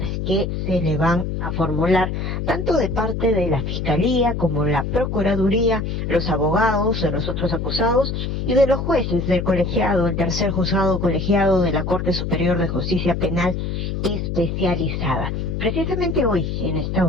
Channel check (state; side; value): noise; left; hum, 3 dB below the sound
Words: que se le van a formular, tanto de parte de la Fiscalía como la Procuraduría, los abogados de los otros acusados y de los jueces del colegiado, el tercer juzgado colegiado de la Corte Superior de Justicia Penal Especializada. Precisamente hoy, en esta